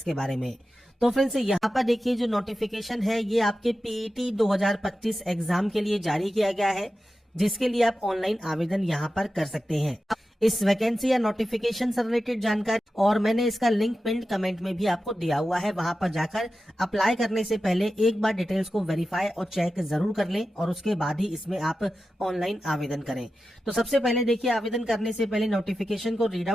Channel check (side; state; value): both; normal; correlation 0.92